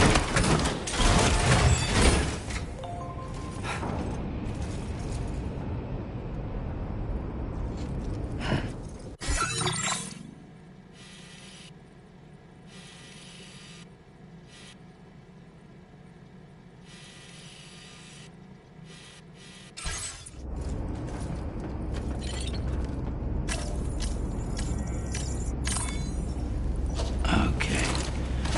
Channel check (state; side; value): identical; both; correlation 1.00